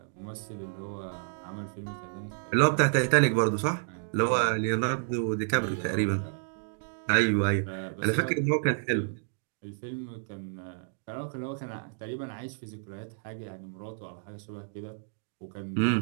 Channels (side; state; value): left; silent; digital silence